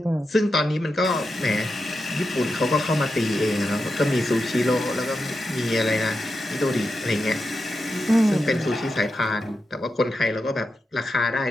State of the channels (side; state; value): both; normal; correlation 0.88